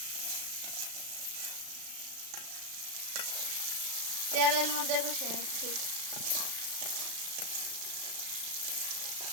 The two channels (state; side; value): late; left; 35 ms